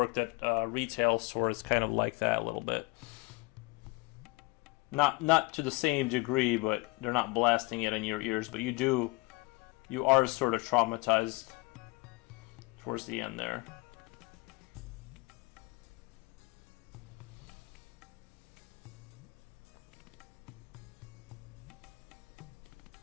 at a retail store, it's kind of like that a little bit. Not to the same degree, but they're not blasting it in your ears. But you are sort of traumatized towards the end there.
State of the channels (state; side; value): quieter; right; 24.7 dB